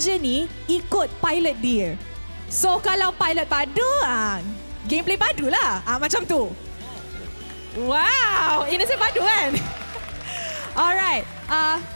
ni ikut pilot dia. So kalau pilot padu, gameplay padu lah. Macam tu. Wow, Innocent padu kan? Alright,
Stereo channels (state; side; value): inverted; both; correlation -1.00